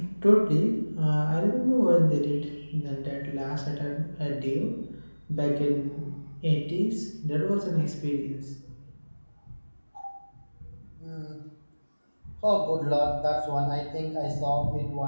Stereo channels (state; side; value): inverted; both; correlation -1.00